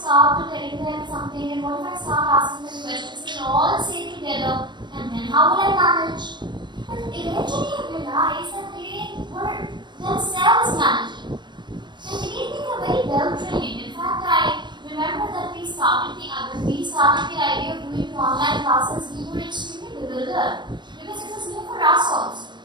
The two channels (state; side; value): late; left; 0.22 ms